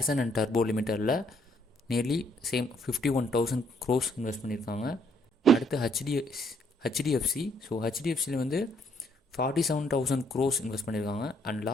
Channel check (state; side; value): normal; both; correlation 0.68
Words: அண்ட் டர்போ லிமிட்டடில் நியர்லி சேம் 51,000 crores இன்வெஸ்ட் பண்ணியிருக்காங்க. அடுத்து ஹெச்டிஎஃப்சி. ஸோ ஹெச்டிஎஃப்சியில் வந்து 47,000 crores இன்வெஸ்ட் பண்ணியிருக்காங்க. அண்ட்